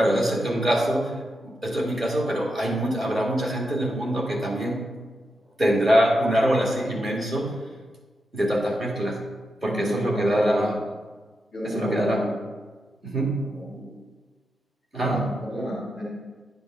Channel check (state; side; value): normal; both; correlation 0.86